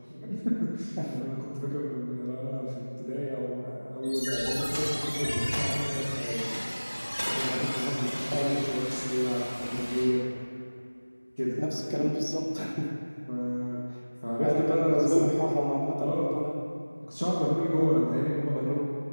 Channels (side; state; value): both; inverted; correlation -1.00